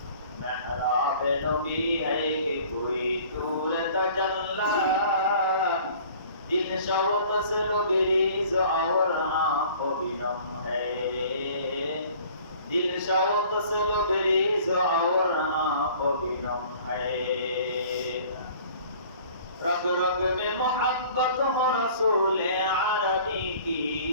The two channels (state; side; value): inverted; both; correlation -0.50